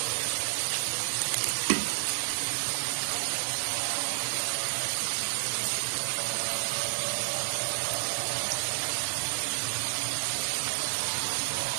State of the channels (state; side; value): silent; left; digital silence